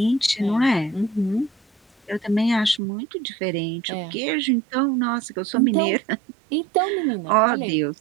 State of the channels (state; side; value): drops out; left; at 2.8 s